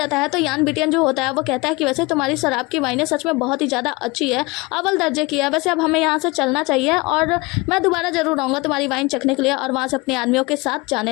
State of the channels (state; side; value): quieter; right; 24.3 dB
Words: है। तो यान बिटियन जो होता है वो कहता है कि वैसे तुम्हारी शराब की वाइनें सच में बहुत ही ज़्यादा अच्छी है, अव्वल दर्जे की है, वैसे अब हमें यहाँ से चलना चाहिए और मैं दोबारा जरूर आऊँगा तुम्हारी वाइन चखने के लिए। और वहाँ से अपने आदमियों के साथ